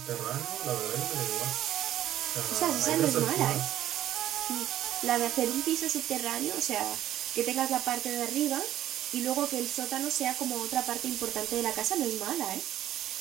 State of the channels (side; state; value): left; quieter; 12.6 dB